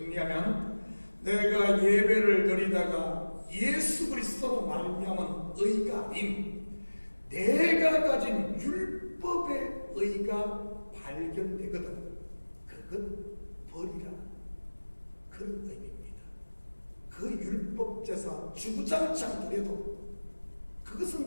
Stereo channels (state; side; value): inverted; both; correlation -1.00